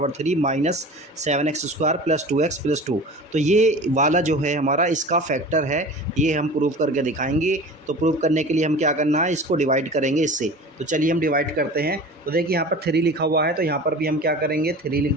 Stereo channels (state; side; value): normal; both; correlation 0.38